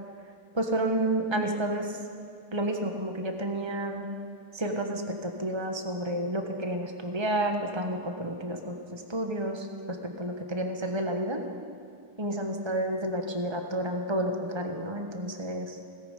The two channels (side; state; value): left; late; 1.3 ms